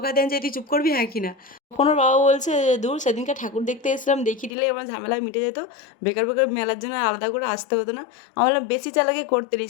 দেন যে তুই চুপ করবি হ্যাঁ কি না। তখন ওর বাবা বলছে যে দূর সেদিনকে ঠাকুর দেখতে এসেছিলাম, দেখিয়ে দিলেই আমার ঝামেলা মিটে যেত, বেকার বেকার মেলার জন্য আলাদা করে আসতে হতো না। আমার বললাম বেশি চালাকি করতে নেই,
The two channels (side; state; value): right; drops out; at 4.5 s